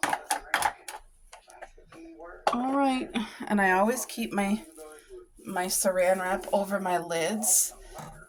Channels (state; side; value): identical; both; correlation 1.00